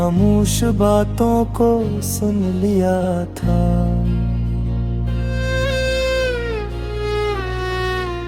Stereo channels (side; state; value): both; identical; correlation 1.00